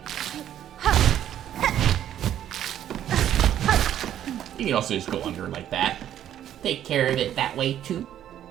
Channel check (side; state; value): left; quieter; 11.0 dB